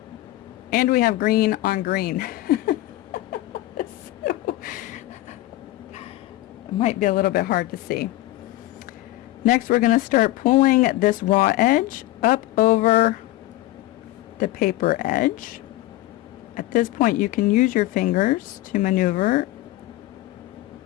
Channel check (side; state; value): right; quieter; 16.7 dB